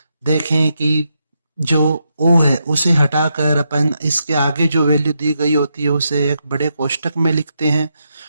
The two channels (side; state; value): both; inverted; correlation -0.82